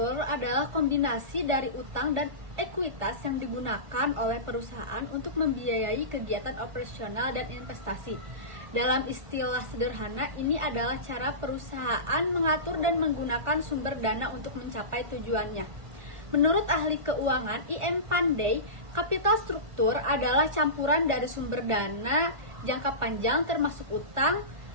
adalah kombinasi dari utang dan ekuitas yang digunakan oleh perusahaan untuk membiayai kegiatan operasional dan investasi. Dalam istilah sederhana, ini adalah cara perusahaan mengatur dan menggunakan sumber dana untuk mencapai tujuannya. Menurut ahli keuangan I.M. Pandey, capital struktur adalah campuran dari sumber dana jangka panjang termasuk utang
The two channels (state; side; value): late; left; 1.4 ms